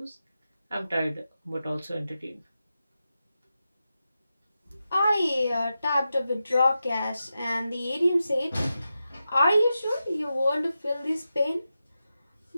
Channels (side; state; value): both; inverted; correlation -0.90